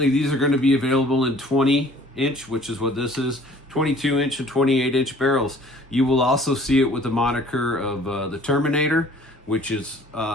these are going to be available in 20-inch, which is what this is, 22-inch and 28-inch barrels. You will also see it with the moniker of the Terminator, which is,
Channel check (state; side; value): normal; both; correlation 0.53